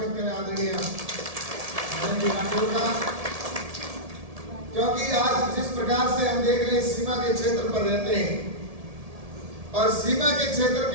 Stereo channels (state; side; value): late; left; 1.7 ms